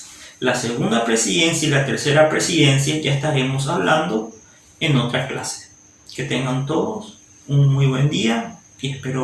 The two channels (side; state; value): both; identical; correlation 1.00